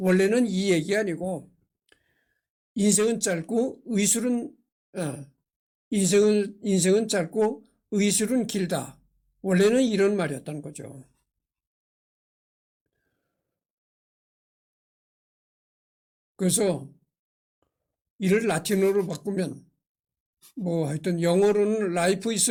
이 얘기 아니고 인생은 짧고 인생은 짧고 의술은 길다. 원래는 이런 말이었다는 거죠. 그래서 이를 라틴어로 바꾸면 하여튼 영어로는 life is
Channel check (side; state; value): both; identical; correlation 1.00